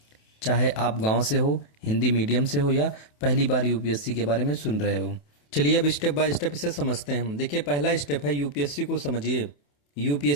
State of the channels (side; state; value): right; late; 28 ms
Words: चाहे आप गांव से हो, हिंदी मीडियम से हो या पहली बार यूपीएससी के बारे में सुन रहे हो। चलिए अब स्टेप बाय स्टेप इसे समझते हैं। देखिए, पहला स्टेप है यूपीएससी को समझिए।